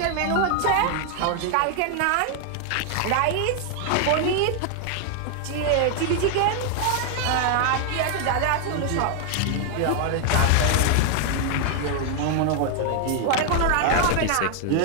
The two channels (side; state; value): both; different; correlation 0.00